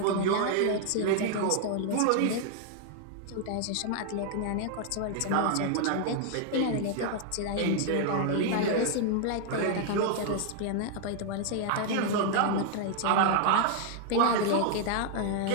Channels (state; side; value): different; both; correlation 0.00